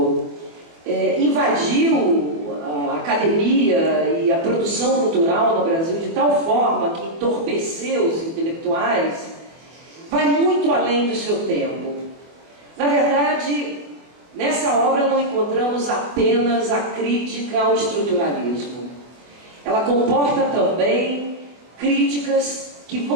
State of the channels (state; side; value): late; left; 24 ms